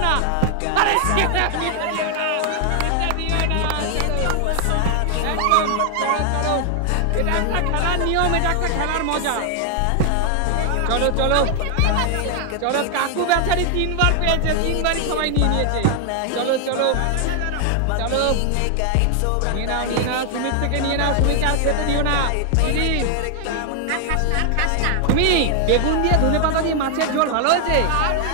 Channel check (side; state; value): both; different; correlation 0.00